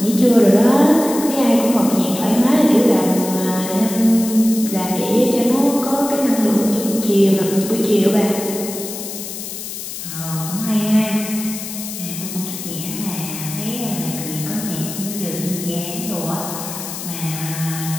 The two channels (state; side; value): noise; left; hiss, 8 dB below the sound